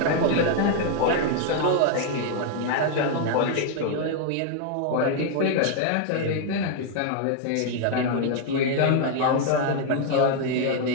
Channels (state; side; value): different; both; correlation 0.00